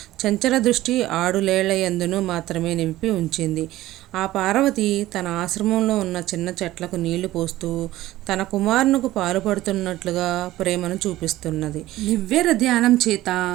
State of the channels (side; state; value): left; quieter; 15.9 dB